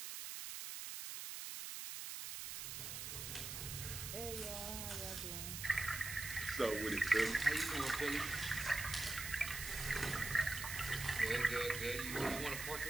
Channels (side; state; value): right; noise; hiss, 6 dB below the sound